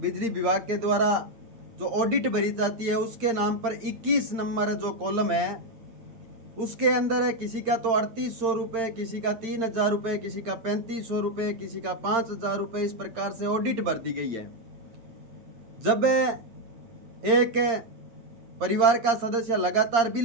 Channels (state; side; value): late; left; 8.8 ms